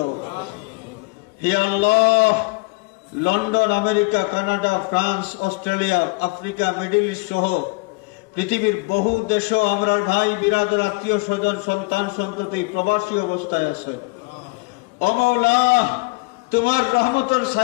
হে আল্লাহ, London, America, Canada, France, Australia, Africa, Middle East সহ পৃথিবীর বহু দেশও আমরার ভাই বিরাদর আত্মীয় স্বজন সন্তান সন্ততি প্রবাসী অবস্থায় আছে। ও মাওলা, তোমার রহমতের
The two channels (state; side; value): quieter; right; 27.9 dB